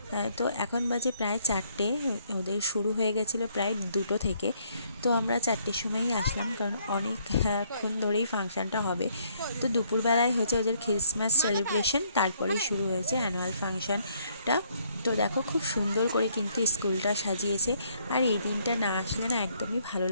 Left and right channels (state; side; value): inverted; both; correlation -0.68